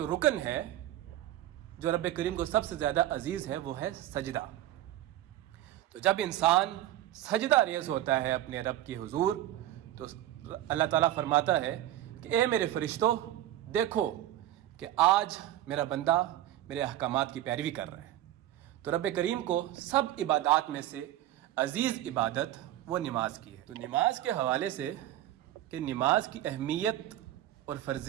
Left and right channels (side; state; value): left; quieter; 13.6 dB